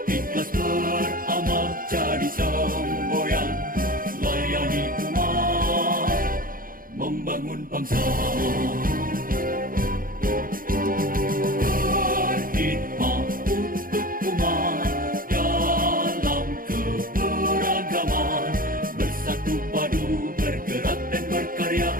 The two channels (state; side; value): late; left; 0.41 ms